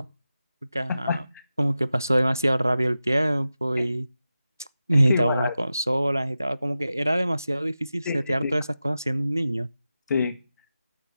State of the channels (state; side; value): inverted; both; correlation -0.93